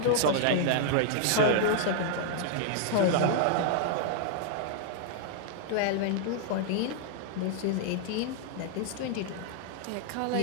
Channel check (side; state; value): both; different; correlation 0.00